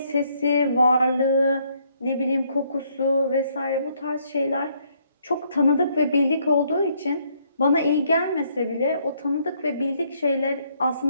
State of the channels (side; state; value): both; inverted; correlation -0.70